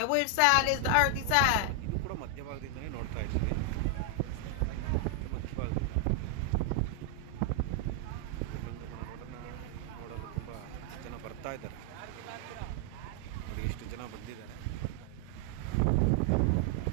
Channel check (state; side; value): different; both; correlation 0.00